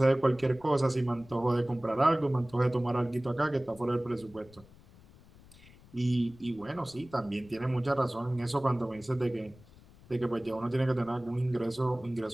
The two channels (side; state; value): left; noise; rumble, 23 dB below the sound